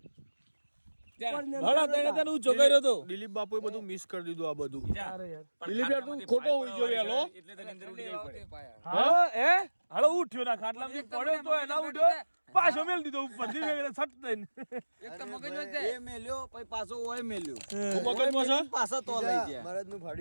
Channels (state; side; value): inverted; both; correlation -1.00